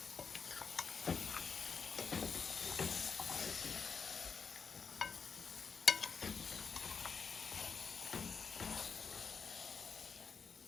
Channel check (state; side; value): quieter; right; 5.7 dB